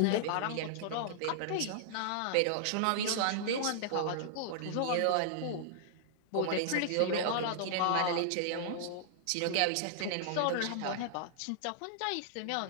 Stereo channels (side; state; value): both; different; correlation -0.01